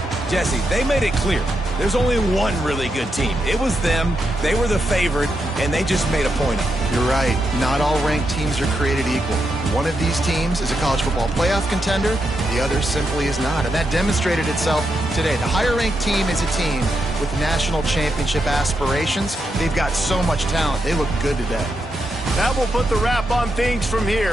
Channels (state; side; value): normal; both; correlation 0.83